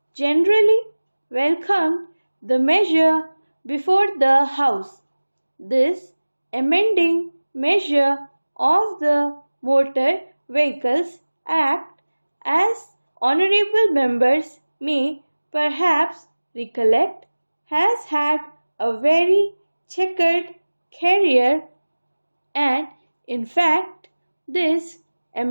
generally welcomed the measure before the House. This amending measure of the Motor Vehicles Act, as honorable members may perhaps recollect, has had a very checkered career, and in fact this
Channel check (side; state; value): both; inverted; correlation -1.00